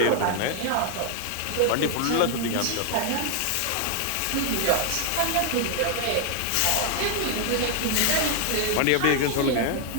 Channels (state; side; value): different; both; correlation 0.00